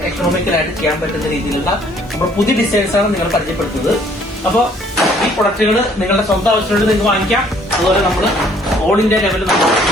എക്കണോമിക്കലായിട്ട് ചെയ്യാൻ പറ്റുന്ന രീതിയിലുള്ള നമ്മുടെ പുതിയ ഡിസൈൻസ് ആണ് നിങ്ങൾ പരിചയപ്പെടുത്തുന്നത്. അപ്പോൾ ഈ പ്രൊഡക്റ്റുകൾ നിങ്ങളുടെ സ്വന്തം ആവശ്യമുണ്ട് നിങ്ങൾക്ക് വാങ്ങിക്കാം. അതുപോലെ നമ്മൾ ഓൾ ഇന്ത്യ ലെവലിൽ നമ്മൾ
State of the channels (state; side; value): normal; both; correlation 0.61